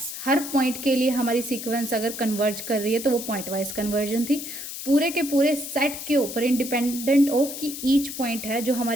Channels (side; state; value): left; noise; hiss, 8 dB below the sound